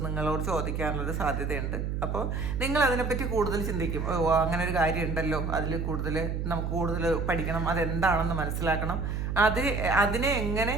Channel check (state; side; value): noise; right; hum, 2 dB below the sound